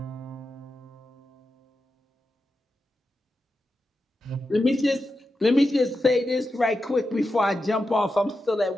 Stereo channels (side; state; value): both; normal; correlation 0.89